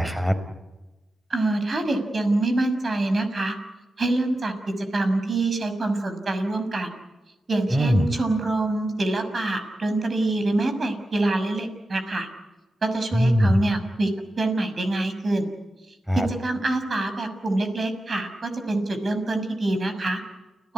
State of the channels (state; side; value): normal; both; correlation 0.91